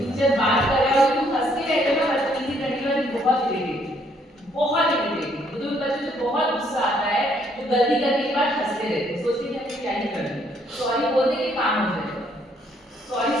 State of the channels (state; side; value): normal; both; correlation 0.68